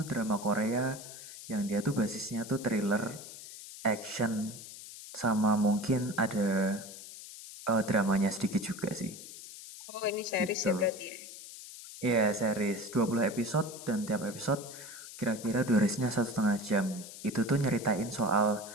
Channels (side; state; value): left; noise; hiss, 13 dB below the sound